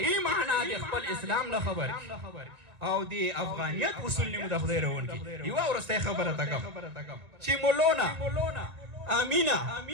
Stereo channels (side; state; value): left; late; 1.9 ms